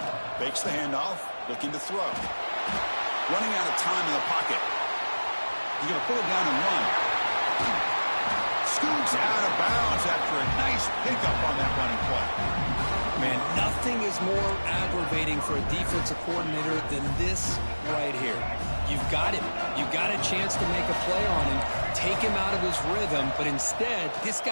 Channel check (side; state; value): both; inverted; correlation -1.00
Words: Fakes the handoff, looking to throw. Running out of time in the pocket. He's going to pull it down and run. Scoots out of bounds after a nice pickup on that running play. Man, nothing is more aggravating for a defensive coordinator than this right here. You've got him. You've got a chance to make a play on him, take him out of his rhythm, but instead, this